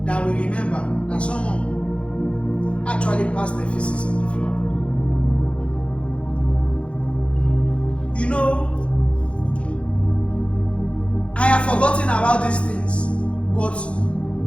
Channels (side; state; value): right; late; 0.060 ms